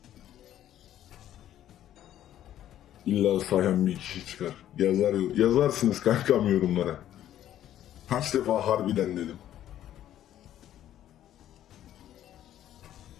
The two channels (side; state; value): right; quieter; 11.8 dB